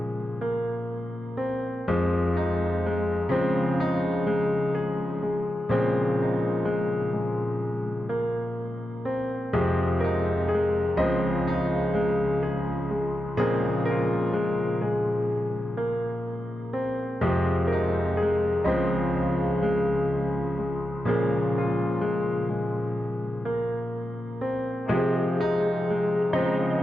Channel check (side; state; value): both; normal; correlation 0.90